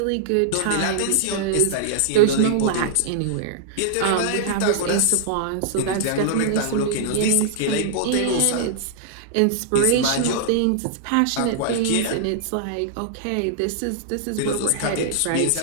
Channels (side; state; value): both; different; correlation -0.01